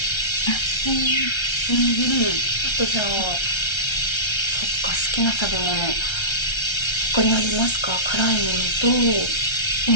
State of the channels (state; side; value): late; right; 1.3 ms